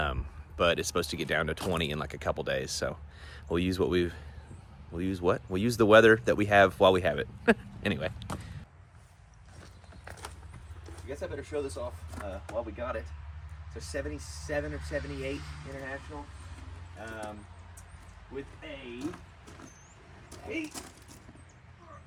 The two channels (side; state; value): both; identical; correlation 1.00